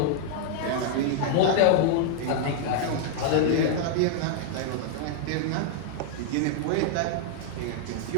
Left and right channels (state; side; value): different; both; correlation -0.01